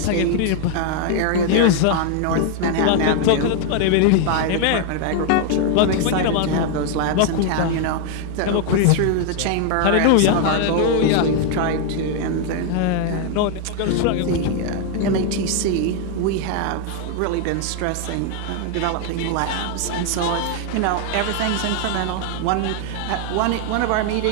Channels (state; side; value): different; both; correlation 0.00